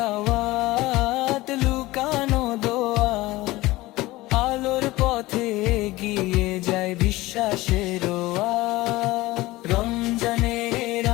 লুকানো দোয়া, আলোর পথে এগিয়ে যায় বিশ্বাসের রাত। রমজানের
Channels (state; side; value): quieter; right; 19.1 dB